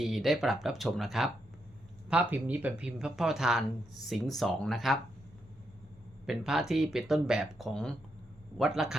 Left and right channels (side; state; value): both; normal; correlation 0.81